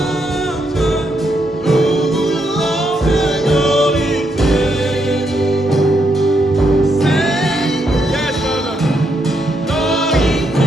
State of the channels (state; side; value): normal; both; correlation 0.79